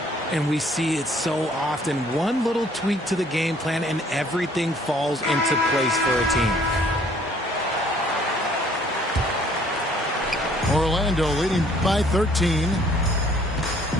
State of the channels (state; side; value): normal; both; correlation 0.60